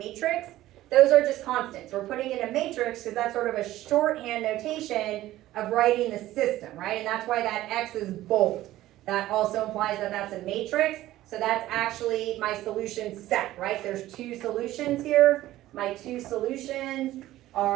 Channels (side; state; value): left; quieter; 15.2 dB